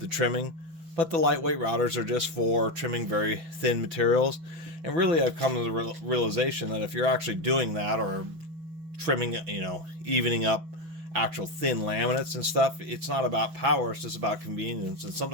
trimming. But the lightweight routers are just for trimming very thin materials. And really, I've come to the realization that if you're actually doing that, or trimming, evening up actual thin laminates and stuff, it's not about power, it's just about convenience. And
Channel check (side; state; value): left; late; 6.2 ms